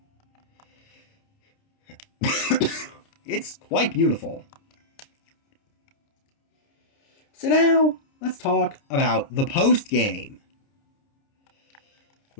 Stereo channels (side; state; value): right; late; 29 ms